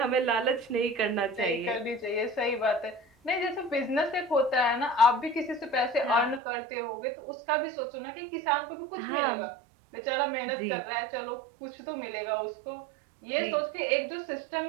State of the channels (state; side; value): drops out; left; at 6.4 s